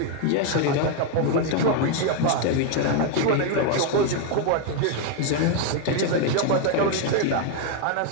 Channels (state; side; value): different; both; correlation 0.01